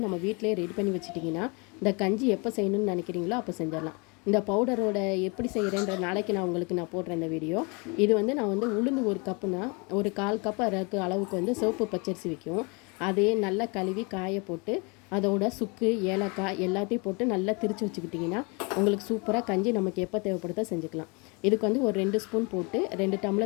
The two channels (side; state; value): right; quieter; 30.7 dB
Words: நம்ம வீட்டிலே ரெடி பண்ணி வச்சுட்டிங்கன்னா இந்த கஞ்சி எப்போ செய்யணும்னு நினைக்கிறீங்களோ அப்போ செஞ்சிடலாம். இந்த பவுடரோட எப்படி செய்கிறேன்ற நாளைக்கு நான் போடுறேன் இந்த வீடியோ. இது வந்து நான் வந்து உளுந்து ஒரு கப்புனா ஒரு 1/4 கப் அளவுக்கு வந்து சிவப்பு பச்சரிசி வைக்கும். அதே நல்லா கழுவி காய போட்டு அதோட சுக்கு ஏலக்காய் எல்லாத்தையும் போட்டு நல்லா திரித்து வச்சுக்கிட்டிங்கன்னா உங்களுக்கு சூப்பராக கஞ்சி நமக்கு எப்போ தேவைப்படுதோ செஞ்சுக்கலாம். இதுக்கு வந்து ஒரு 2 ஸ்பூன் போட்டு 2